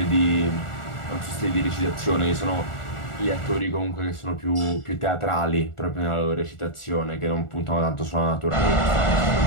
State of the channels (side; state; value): right; late; 1.4 ms